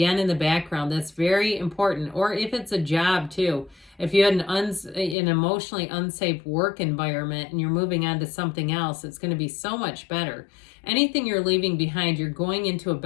in the background. That's very important. Or if it's a job too. If you had an emotionally unsafe work environment and you're moving on to something else, it's going to be so much better. Anything you're leaving behind, you're going into a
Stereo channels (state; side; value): drops out; right; at 5.2 s